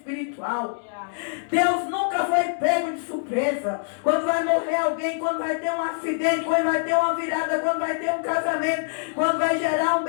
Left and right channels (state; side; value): silent; right; digital silence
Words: Deus nunca foi pego de surpresa. Quando vai morrer alguém, quando vai ter um acidente, quando vai ter uma virada, quando vai ter um casamento, quando vai gerar um